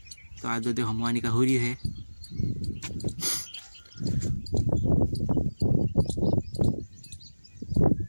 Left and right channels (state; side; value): inverted; both; correlation -1.00